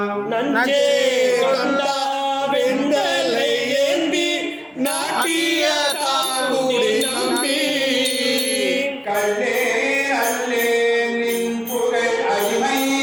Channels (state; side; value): identical; both; correlation 1.00